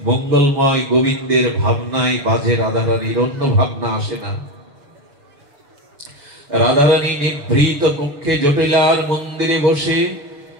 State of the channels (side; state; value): left; late; 6.7 ms